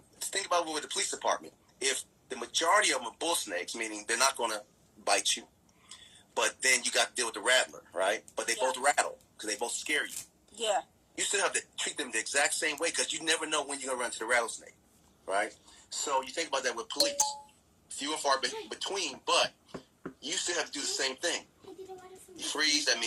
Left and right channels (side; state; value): both; identical; correlation 1.00